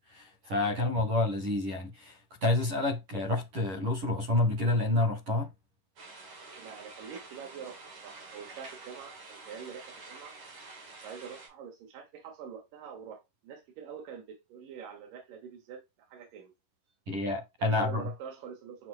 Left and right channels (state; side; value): late; left; 10 ms